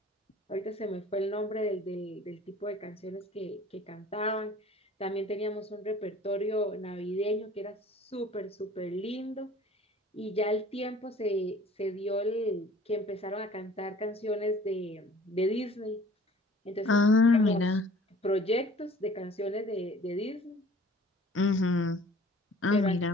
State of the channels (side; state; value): both; normal; correlation 0.49